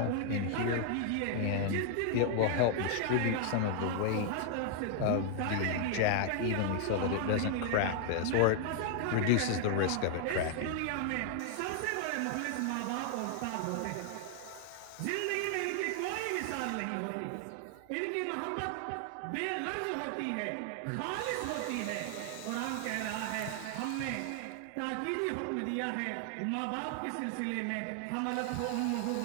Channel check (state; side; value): different; both; correlation 0.00